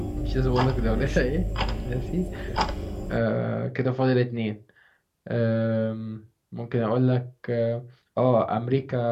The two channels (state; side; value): identical; both; correlation 1.00